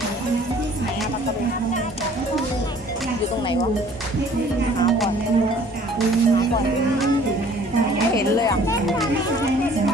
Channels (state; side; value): normal; both; correlation 0.53